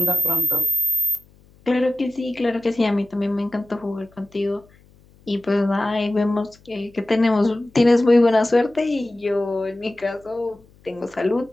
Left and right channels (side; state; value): left; noise; hum, 29 dB below the sound